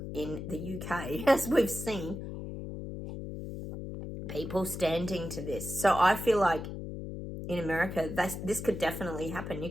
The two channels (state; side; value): noise; left; hum, 7 dB below the sound